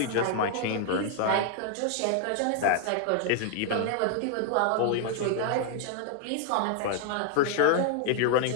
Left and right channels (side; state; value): both; different; correlation 0.00